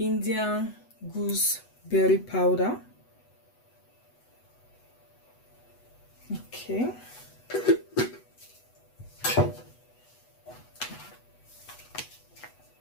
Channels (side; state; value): right; late; 8.1 ms